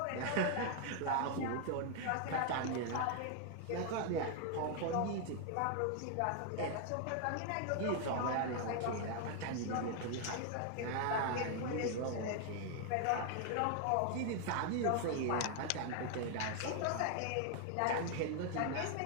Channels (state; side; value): different; both; correlation 0.00